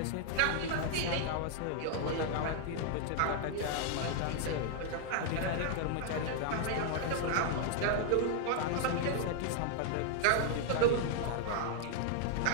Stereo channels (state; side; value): different; both; correlation 0.00